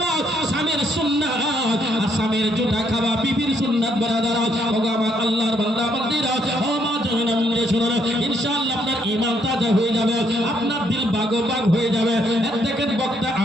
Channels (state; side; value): normal; both; correlation 0.72